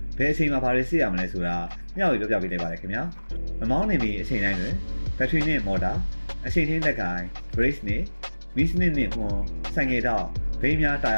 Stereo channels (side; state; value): both; inverted; correlation -1.00